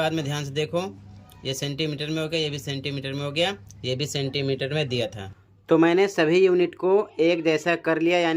में ध्यान से देखो, ये सेंटीमीटर में हो गया, ये भी सेंटीमीटर में हो गया, ये भी सेंटीमीटर में दिया था। तो मैंने सभी यूनिट को एक जैसा कर लिया,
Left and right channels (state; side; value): identical; both; correlation 1.00